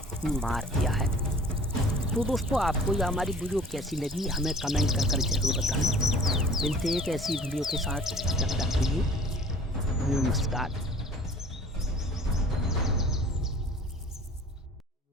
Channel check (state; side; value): normal; both; correlation 0.48